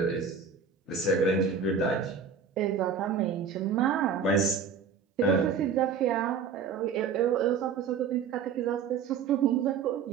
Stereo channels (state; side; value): quieter; left; 6.3 dB